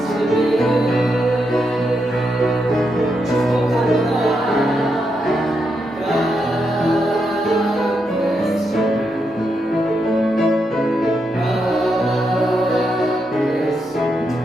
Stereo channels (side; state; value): both; normal; correlation 0.83